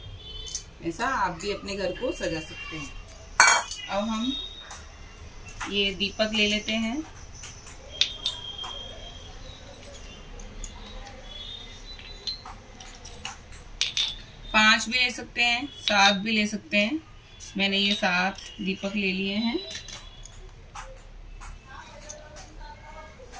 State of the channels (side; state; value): both; identical; correlation 1.00